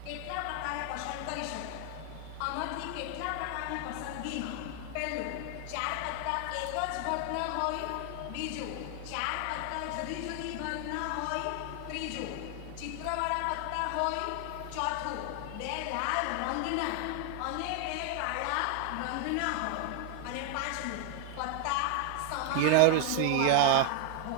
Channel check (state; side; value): different; both; correlation 0.00